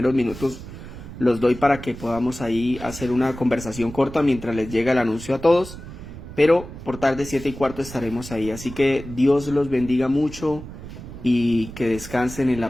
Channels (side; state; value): right; noise; rumble, 13 dB below the sound